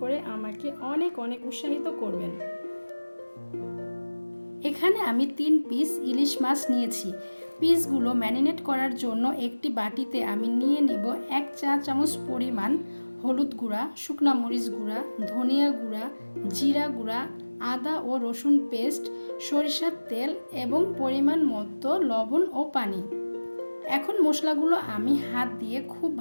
করে আমাকে অনেক অনেক উৎসাহিত করবেন। এখানে আমি 3 পিস ইলিশ মাছ নিয়েছি। পিসগুলো ম্যারিনেট করার জন্য একটি বাটিতে আমি নিয়ে নেব 1 চা চামচ পরিমাণ হলুদ গুঁড়া, শুকনা মরিচ গুঁড়া, ধনিয়া গুঁড়া, জিরা গুঁড়া, আদা ও রসুন পেস্ট, সরিষার তেল এবং পরিমাণ মতো লবণ ও পানি। এখন মশলাগুলো আমি হাত দিয়ে খুব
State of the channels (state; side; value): inverted; both; correlation -1.00